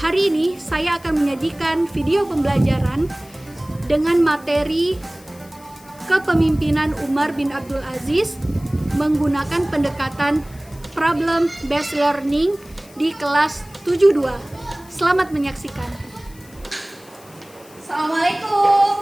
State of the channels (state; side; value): noise; left; hiss, 24 dB below the sound